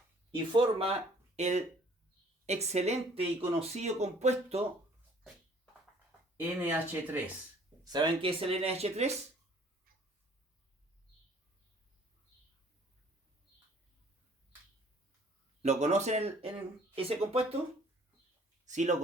y forma el excelente y conocido compuesto NH3. ¿Saben qué es el NH3? ¿Lo conocen ese compuesto? Sí lo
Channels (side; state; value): both; normal; correlation 0.56